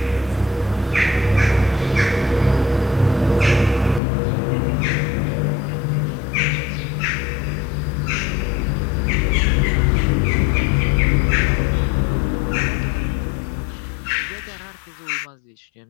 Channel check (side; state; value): right; drops out; at 4.0 s